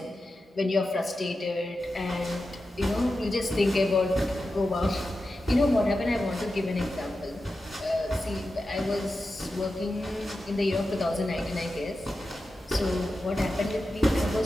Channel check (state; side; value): normal; both; correlation 0.91